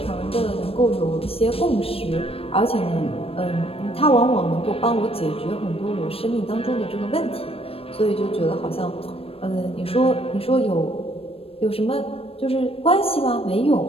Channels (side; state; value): right; late; 0.28 ms